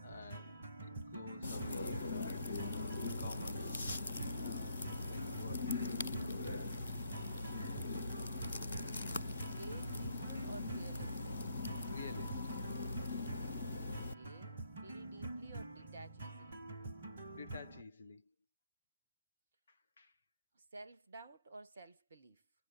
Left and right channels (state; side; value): inverted; both; correlation -0.72